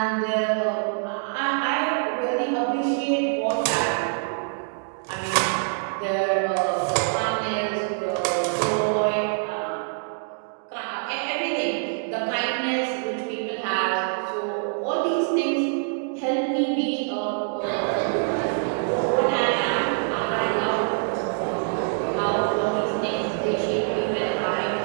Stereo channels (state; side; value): silent; left; digital silence